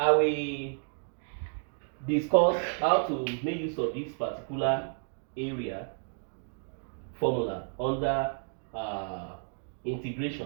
will discuss how to make use of this particular area formula under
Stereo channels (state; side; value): silent; left; 57 dB below the other